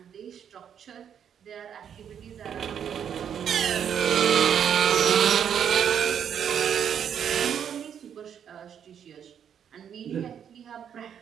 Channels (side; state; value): left; quieter; 8.5 dB